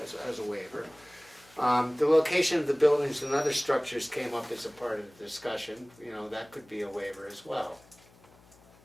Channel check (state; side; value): noise; left; hum, 27 dB below the sound